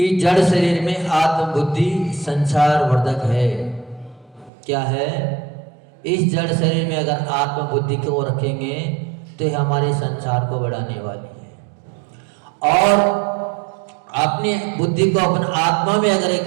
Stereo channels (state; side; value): drops out; left; at 4.5 s